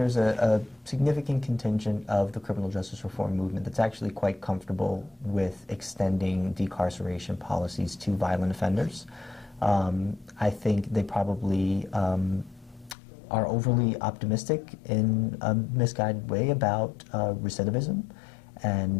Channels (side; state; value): right; drops out; at 13.0 s